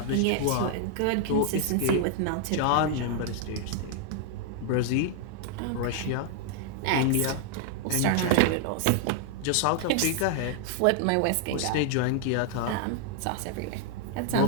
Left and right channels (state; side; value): different; both; correlation 0.00